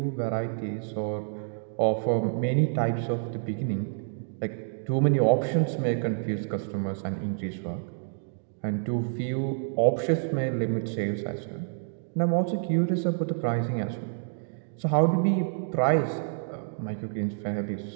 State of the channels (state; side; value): silent; left; digital silence